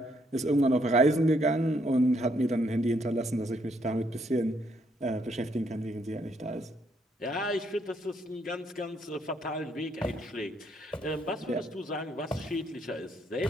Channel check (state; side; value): normal; both; correlation 0.72